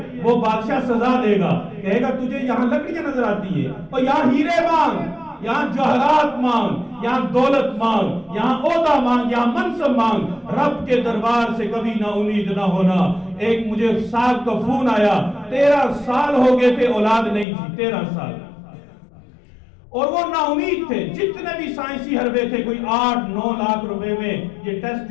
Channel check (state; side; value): drops out; right; at 17.4 s